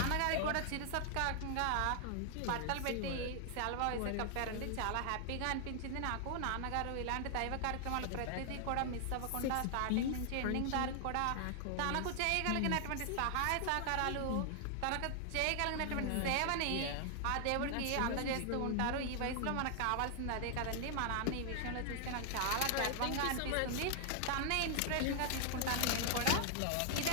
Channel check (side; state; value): both; different; correlation 0.00